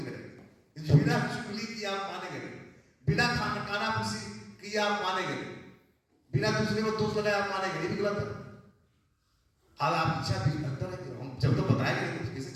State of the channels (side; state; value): both; identical; correlation 1.00